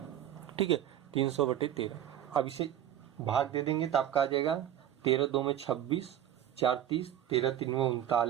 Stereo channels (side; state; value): left; quieter; 11.2 dB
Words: ठीक है, 300/13। अब इसे भाग दे देंगे तो आपका आ जाएगा 13 2 में 26, 4 30, 13 3 में